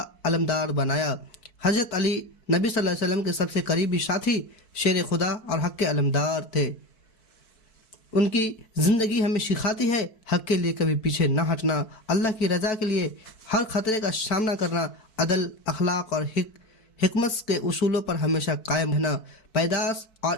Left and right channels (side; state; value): right; late; 4.6 ms